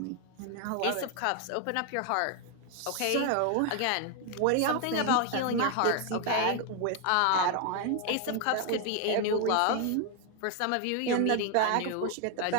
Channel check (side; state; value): both; different; correlation 0.01